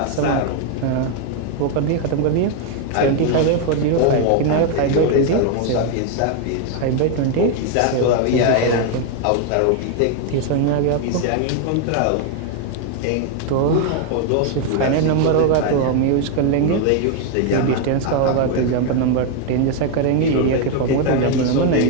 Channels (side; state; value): both; different; correlation 0.01